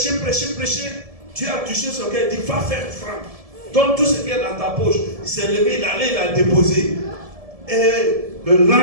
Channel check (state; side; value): late; left; 1.7 ms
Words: Dieu a touché son cœur, il dit, va faire franc. Donne tout ce qui est dans ta poche. Il s'est levé, il allait, il a déposé. Et le